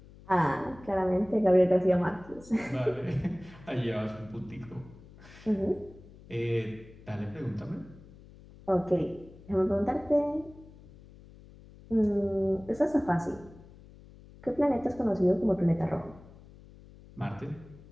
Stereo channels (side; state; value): left; noise; hum, 21 dB below the sound